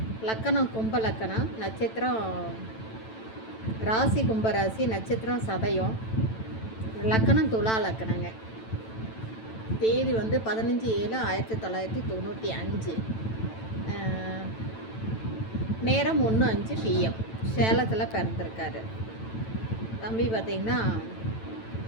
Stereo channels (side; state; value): right; late; 9.0 ms